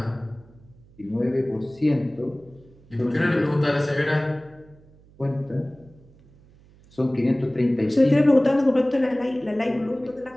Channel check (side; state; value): right; noise; hum, 27 dB below the sound